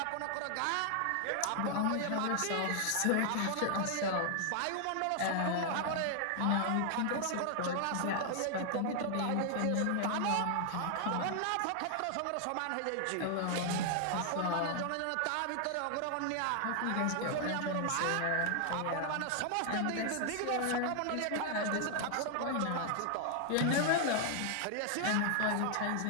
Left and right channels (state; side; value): different; both; correlation 0.00